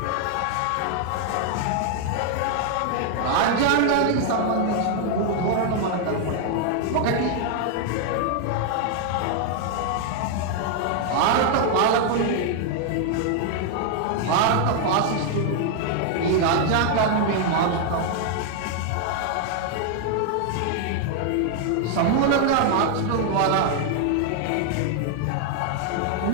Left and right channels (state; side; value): different; both; correlation 0.00